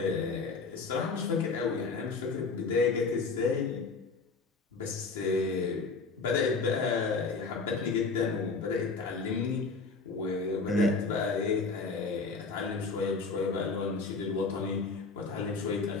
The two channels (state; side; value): quieter; right; 4.2 dB